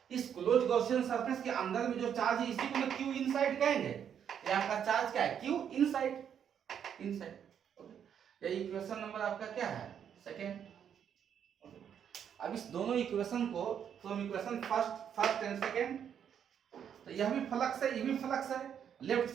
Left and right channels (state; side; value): quieter; left; 8.5 dB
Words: इस क्लोज गॉसियन सरफेस के अंदर में जो चार्ज है इसी को मैं Q इनसाइड कहेंगे। ये आपका चार्ज क्या है, क्यू इनसाइड, इनसाइड। ओके, ये इक्वेशन नंबर आपका क्या है, सेकेंड। अब इस दोनों इक्वेशन को from equation first and second, तो यह भी फ्लक्स है, ये भी फ्लक्स है, लेफ्ट